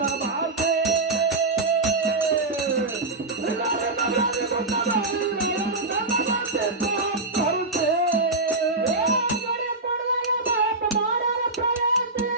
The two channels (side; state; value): left; quieter; 3.2 dB